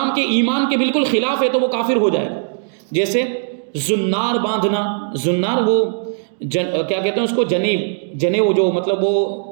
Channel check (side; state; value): left; silent; digital silence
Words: کے ایمان کے بالکل خلاف ہے، تو وہ کافر ہو جائے گا۔ جیسے زنار باندھنا، زنار وہ کیا کہتے ہیں اس کو، جنیو جو مطلب وہ